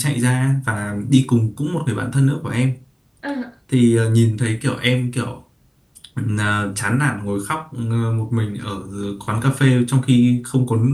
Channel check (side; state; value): both; identical; correlation 1.00